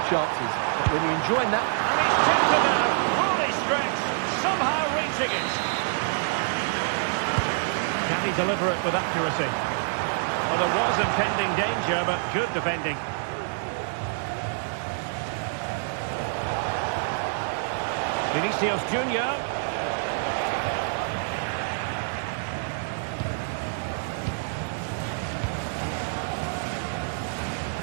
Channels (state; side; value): silent; left; digital silence